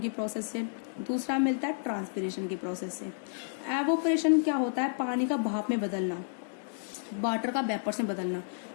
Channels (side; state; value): right; silent; 57 dB below the other